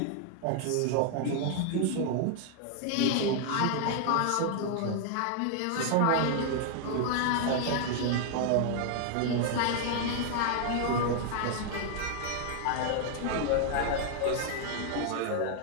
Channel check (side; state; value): both; different; correlation 0.00